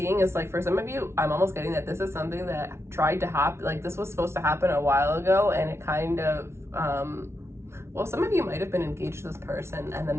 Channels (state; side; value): late; left; 0.13 ms